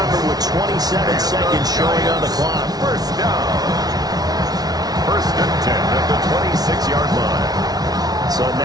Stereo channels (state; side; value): late; left; 0.19 ms